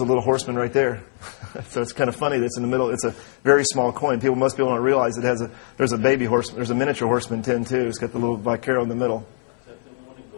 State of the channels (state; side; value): silent; right; 64 dB below the other